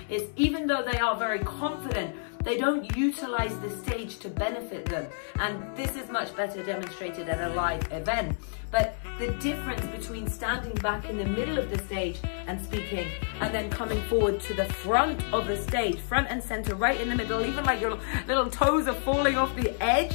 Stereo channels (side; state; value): right; silent; 59 dB below the other